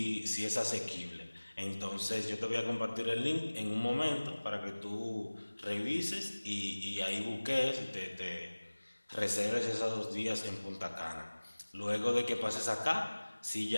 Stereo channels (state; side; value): inverted; both; correlation -1.00